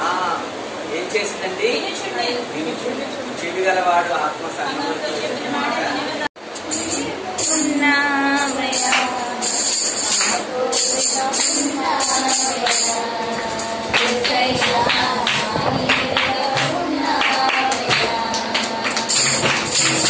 ఏం చేసిందండి? చెవి గలవాడు ఆత్మ సంగముతో చెప్పిన మాట ఉన్నామయ్యా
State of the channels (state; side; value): identical; both; correlation 1.00